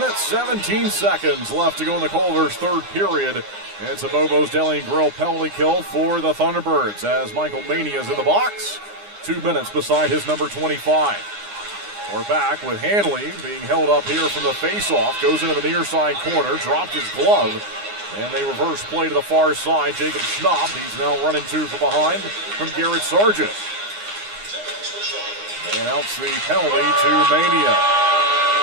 17 seconds left to go in the Culver's third period. It's a Bobo's Deli and Grill penalty kill for the Thunderbirds as Michael Mania is in the box. 2 minutes beside his number 25. We're back with Hanley being held up here from the face-off. Goes into the near side corner, dropped his glove, and they reverse play to the far side. Jacob Schnapp, he's now running two from behind from Garrett Sargent. They announce the penalty to Mania.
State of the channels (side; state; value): left; late; 9.8 ms